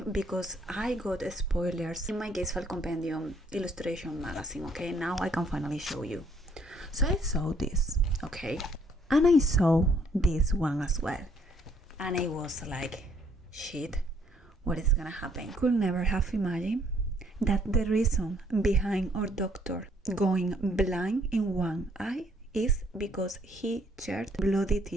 because I got spoilers in my Case File Compendium illustration magazine. Okay, now I can finally show you. So I saw this, okay, and I saw this one as well. And I was like, shit, what is gonna happen? Could never have imagined that the reason behind our doctor going blind in one eye is because he shed bloody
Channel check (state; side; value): normal; both; correlation 0.65